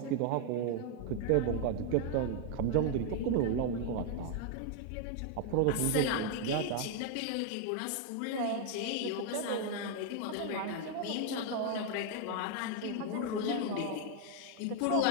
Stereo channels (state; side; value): different; both; correlation 0.00